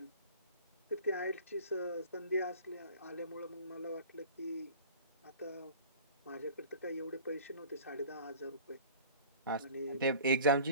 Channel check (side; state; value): both; inverted; correlation -0.43